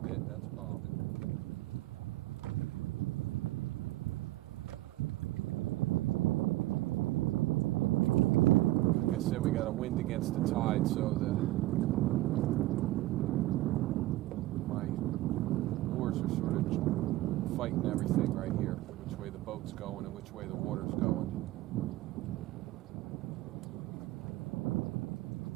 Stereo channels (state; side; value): quieter; left; 17.2 dB